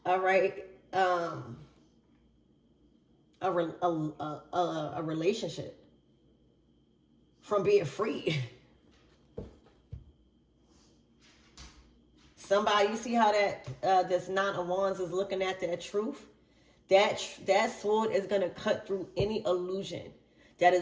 all right, a relationship from being free. Somebody, you see how that this Nine of Wands is looking at that truth? That sword is going to cut through any illusion that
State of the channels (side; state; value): both; identical; correlation 1.00